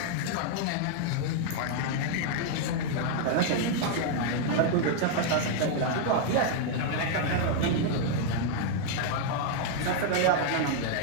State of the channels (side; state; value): both; different; correlation 0.00